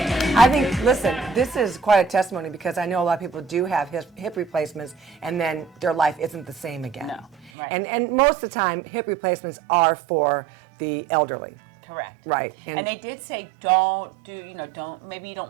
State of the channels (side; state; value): left; drops out; at 7.5 s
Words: I think, listen, this is quite a testimony because I know a lot of people do have hip replacements and then their life isn't the same again. No, right. And most of the time, hip replacements are for the elderly. Correct. Right. And they did say, don't do, maybe you don't